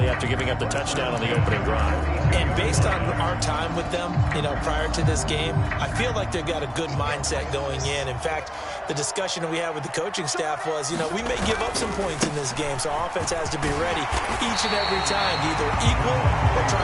after giving up the touchdown on the opening drive. And based on our time with them, prior to this game, I feel like they've got a good mindset going in. In fact, the discussion that we had with the coaching staff was, we may give up some points in this game, so our offense has to be ready each and every time to either equal or try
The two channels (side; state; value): both; identical; correlation 1.00